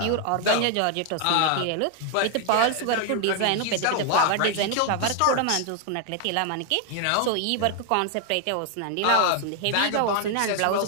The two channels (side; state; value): both; different; correlation 0.00